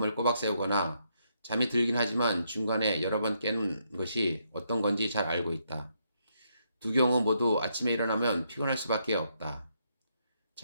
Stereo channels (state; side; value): inverted; both; correlation -0.76